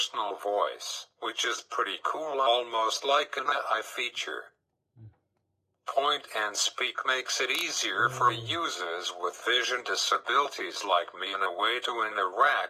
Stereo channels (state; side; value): identical; both; correlation 1.00